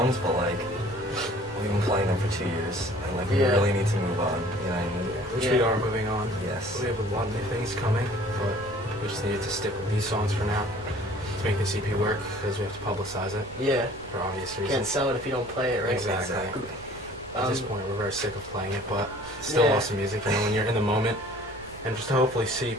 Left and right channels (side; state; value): right; noise; rumble, 20 dB below the sound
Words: but we've been playing them for 2 years, and we Yeah. really need to move on. You know what I mean? Which Yeah. we are moving on. Yes. We have a lot of new things coming, but we just needed to stick with these songs for now to make this EP work because we have to publicize it Yeah. for obvious Can't reasons. sell it if you don't play it, right? Exactly. At this point, we're very sick of playing it, but it's still Yeah. awesome music. You know, when you're in the moment, and just to hopefully see